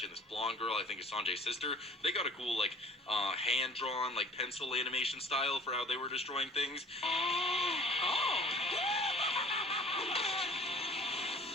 and this blonde girl, I think is Sanjay's sister, they got a cool like hand-drawn like pencil animation style for how they were destroying things.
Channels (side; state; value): both; normal; correlation 0.49